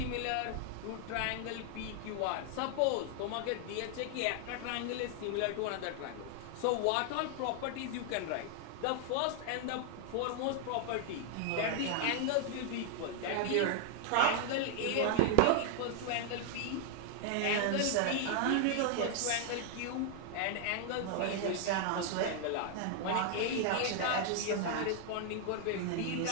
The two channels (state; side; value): different; both; correlation 0.00